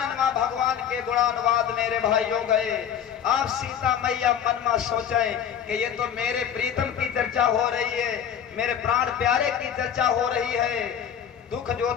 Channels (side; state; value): right; quieter; 8.8 dB